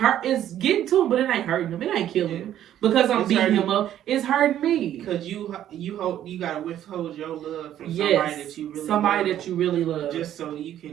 getting to him, but it ain't hurting him. It ain't killing him because I'm beating him up. It's hurting me. Because you gotta withhold your love from somebody that you really love, just so you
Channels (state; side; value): quieter; left; 11.4 dB